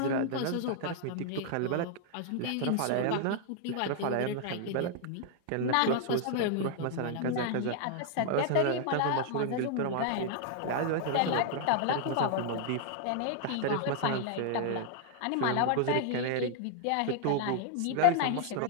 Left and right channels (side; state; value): both; different; correlation 0.00